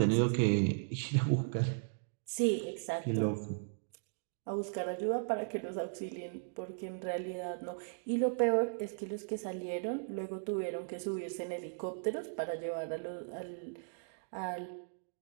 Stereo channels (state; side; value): silent; left; digital silence